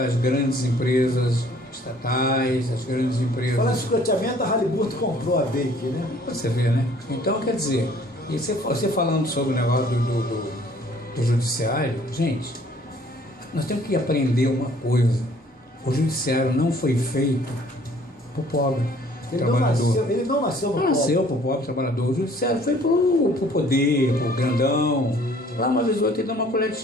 grandes empresas estatais, as grandes empresas. Falando em sucateamento, a Halliburton comprou a Bake, né? Você vê, né? Então, quer dizer, e você falando sobre o negócio do judiciário, gente, nós temos que aprender uma coisa. O judiciário não foi feito para o pobre trabalhador. Ele não nasceu no Não nasceu para o pobre trabalhador. O judiciário foi para o poder, para o grandão. Lá uma vez ou outra ele dá uma colher de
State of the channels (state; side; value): normal; both; correlation 0.57